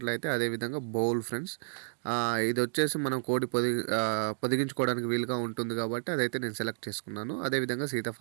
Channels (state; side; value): silent; left; digital silence